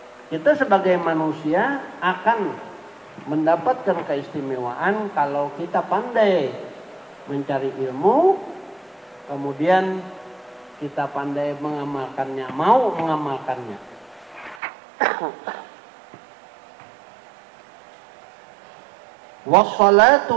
Kita sebagai manusia akan mendapatkan keistimewaan kalau kita pandai mencari ilmu, kemudian kita pandai mengamalkannya, mau mengamalkannya.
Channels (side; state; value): left; drops out; at 14.6 s